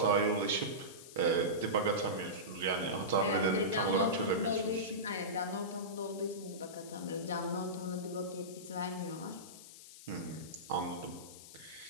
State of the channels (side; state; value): left; noise; hiss, 16 dB below the sound